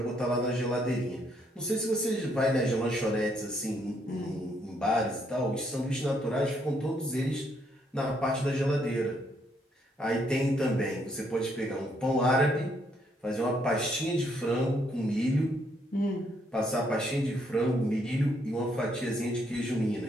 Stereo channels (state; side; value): normal; both; correlation 0.72